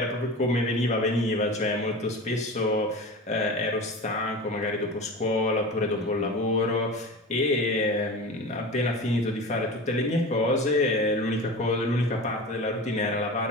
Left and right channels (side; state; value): both; normal; correlation 0.31